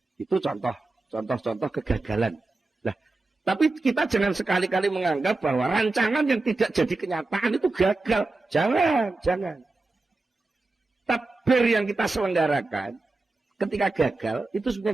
Itu contoh kegagalan. Tapi kita jangan sekali-kali menganggap bahwa rancangan yang tidak jadi kenyataan itu gagal. Jangan. Takbir yang kita selenggarakan ketika gagal, itu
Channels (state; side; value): quieter; left; 3.3 dB